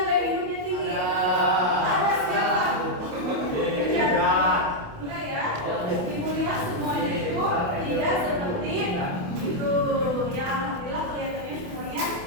gaya hidupnya tinggi? Ada siapa? Enggak ya? Ibu lihat semuanya itu tidak seperti itu. Ya, alhamdulillah kelihatannya semuanya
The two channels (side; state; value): left; late; 28 ms